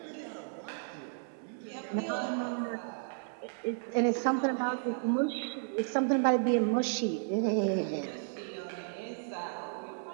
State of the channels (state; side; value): silent; left; digital silence